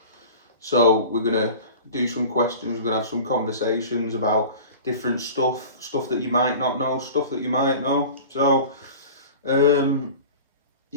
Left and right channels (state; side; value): inverted; both; correlation -0.37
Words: So we're going to do some questions, we're going to have some conversations about different stuff that you might not know, stuff that you might know.